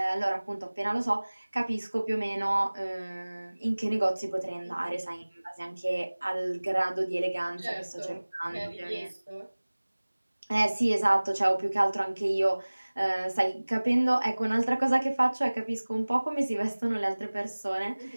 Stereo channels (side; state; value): both; inverted; correlation -1.00